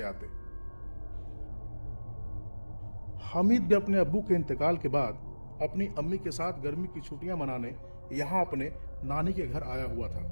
आते। हामिद भी अपने अब्बू के इंतकाल के बाद अपनी अम्मी के साथ गर्मी की छुट्टियां मनाने यहाँ अपने नानी के घर आया हुआ था।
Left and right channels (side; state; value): both; inverted; correlation -1.00